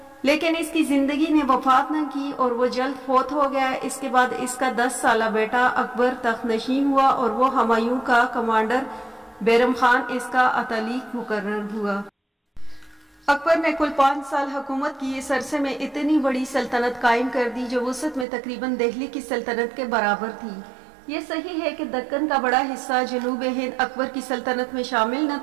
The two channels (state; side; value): drops out; left; at 18.2 s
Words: لیکن اس کی زندگی نے وفات نہ کی اور وہ جلد فوت ہو گیا۔ اس کے بعد اس کا 10 سالہ بیٹا اکبر تخت نشین ہوا اور وہ ہمایوں کا کمانڈر بیرم خان اس کا اتالیق مقرر ہوا۔ اکبر نے کل 5 سال حکومت کی۔ اس عرصے میں اتنی بڑی سلطنت قائم کر دی جو وسعت میں تقریباً دہلی کی سلطنت کے برابر تھی۔ یہ صحیح ہے کہ دکن کا بڑا حصہ جنوب ہند اکبر کی سلطنت میں شامل نہ